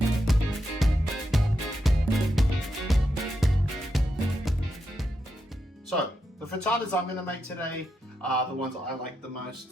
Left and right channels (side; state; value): both; normal; correlation 0.84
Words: So, the frittatas I'm going to make today are the ones I like the